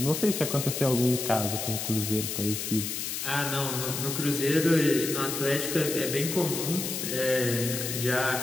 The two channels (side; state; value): left; noise; hiss, 4 dB below the sound